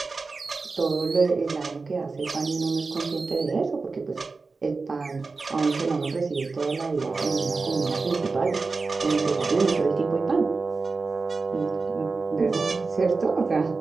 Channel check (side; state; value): left; quieter; 4.1 dB